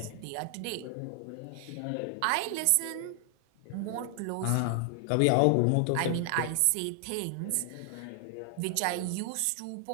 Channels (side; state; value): both; different; correlation 0.00